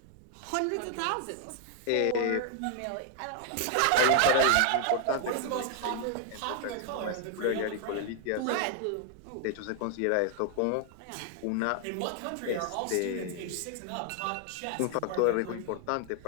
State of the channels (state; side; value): different; both; correlation 0.00